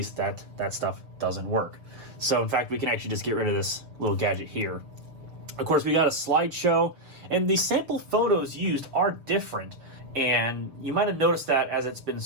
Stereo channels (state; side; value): late; left; 6.8 ms